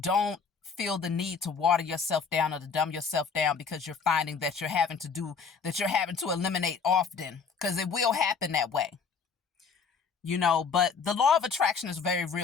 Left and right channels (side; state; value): right; quieter; 5.6 dB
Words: feel the need to water yourself down or to dumb yourself down because you're finding that you're having to eliminate often, because it will happen that way. But the law of attraction is very